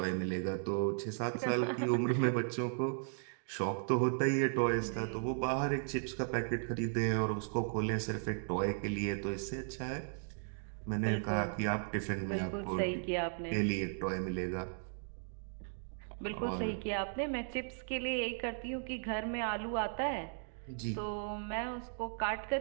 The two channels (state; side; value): silent; left; digital silence